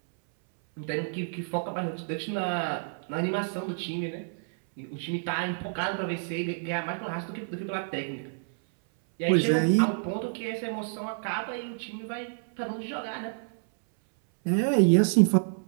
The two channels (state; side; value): silent; left; 59 dB below the other